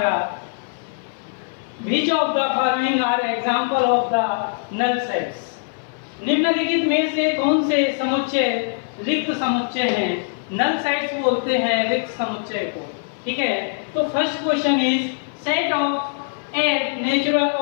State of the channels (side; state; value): right; silent; 57 dB below the other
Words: which of the following are example of the null sets. निम्नलिखित में से कौन से समुच्चय रिक्त समुच्चय हैं? नल सेट्स बोलते हैं रिक्त समुच्चय को। ठीक है, तो first question is set of 8 natural